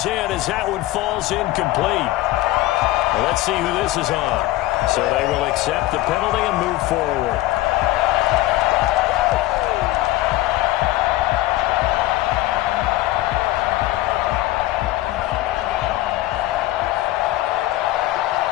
in as that one falls incomplete. Well, let's see who this is on. So they will accept the penalty and move forward.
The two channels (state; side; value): quieter; right; 16.8 dB